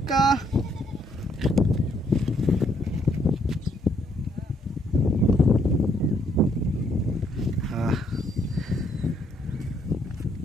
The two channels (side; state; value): both; normal; correlation 0.70